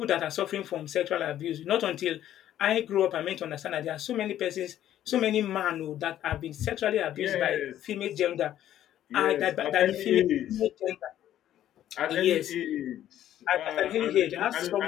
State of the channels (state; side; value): quieter; right; 11.9 dB